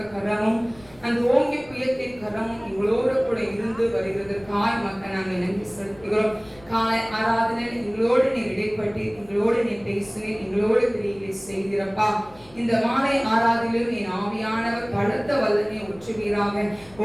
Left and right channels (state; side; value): noise; left; rumble, 25 dB below the sound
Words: கரமும் அந்த ஓங்கிய புயத்தின் கரமும் எங்களோடு கூட இருந்து வருகிறதற்காய் மக்கள் நாங்கள் நன்றி செலுத்துகிறோம். காலை ஆராதனையில் எங்களோடு நீ இடைப்பட்டு எங்களோடு நீ பேசுவேன், எங்களோடு கிரியை செய்கிறப்பா. இந்த மாலை ஆராதனையிலும் என் ஆவியானவர் பலத்த வல்லமை ஊற்றுவீராக.